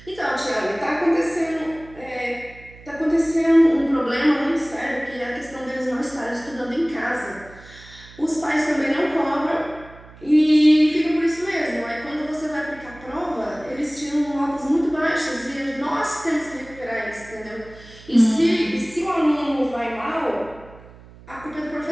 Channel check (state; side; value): noise; right; hum, 21 dB below the sound